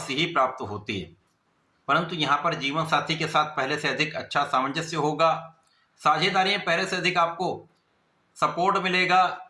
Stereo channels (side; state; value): both; identical; correlation 1.00